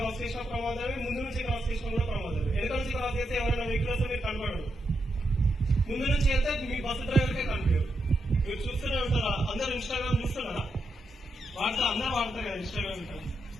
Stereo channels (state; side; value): normal; both; correlation 0.84